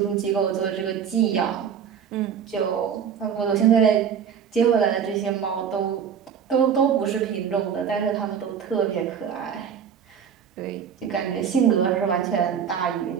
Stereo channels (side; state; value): left; quieter; 7.7 dB